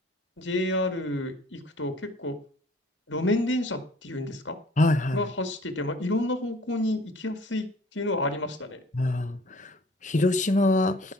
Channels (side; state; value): both; normal; correlation 0.53